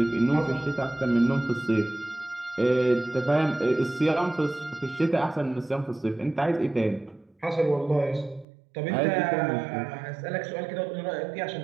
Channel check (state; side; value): drops out; left; at 8.5 s